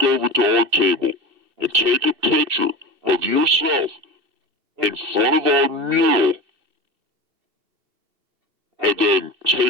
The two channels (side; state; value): left; late; 2.6 ms